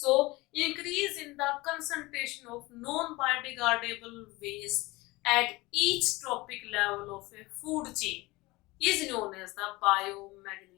increase in the concentration of non-biodegradable waste at each trophic level of a food chain is known as the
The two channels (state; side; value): quieter; right; 21.8 dB